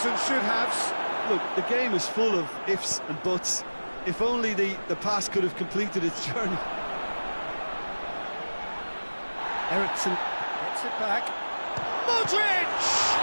and should-haves. Look, the game is full of ifs and buts. If only the pass could have completed its journey. Eriksen gets it back. Modric!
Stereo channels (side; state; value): both; inverted; correlation -1.00